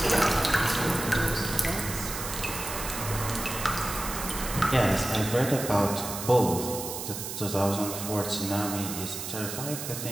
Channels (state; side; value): noise; right; hiss, 7 dB below the sound